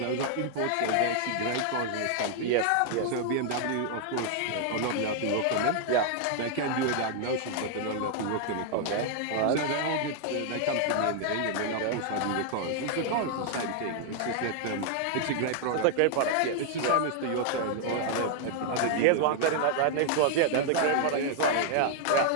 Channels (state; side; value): different; both; correlation 0.00